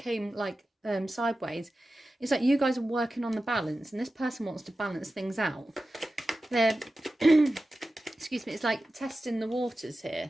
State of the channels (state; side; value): normal; both; correlation 0.94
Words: like sideways. It's like you guys are working on the balance, and this person wants to balance things out. They're excuse me, it's like testing the waters